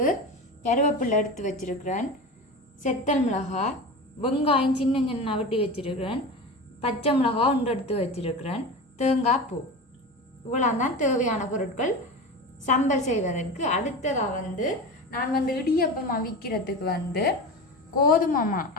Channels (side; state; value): both; normal; correlation 0.28